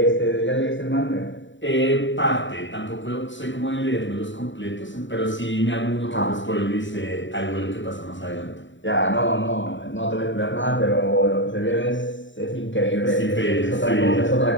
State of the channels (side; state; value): right; late; 0.54 ms